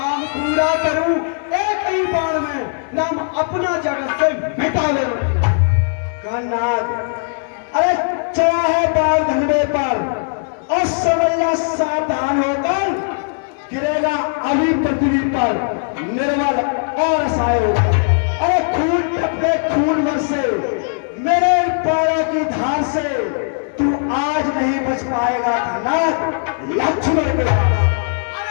पूरा करूं एक ही बाण में, नाम अपना जगत से मिटावे मती। घननाद, अरे चाहे बाल धनवे पर, और समझना सावधान होकर गिरेगा अभी पृथ्वी पर, निर्बल और असहाय होगा। अरे खून टपके खून बरसे मेरे पैरों की धार से, तू आज नहीं बच पाएगा घननाद, लक्ष्मण के बाबा।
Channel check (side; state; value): right; silent; digital silence